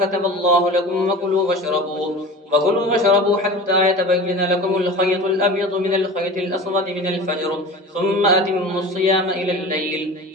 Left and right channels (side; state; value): both; normal; correlation 0.35